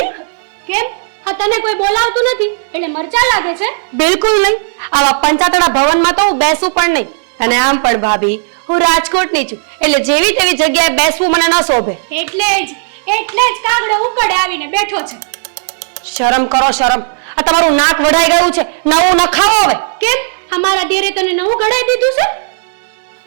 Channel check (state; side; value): silent; left; digital silence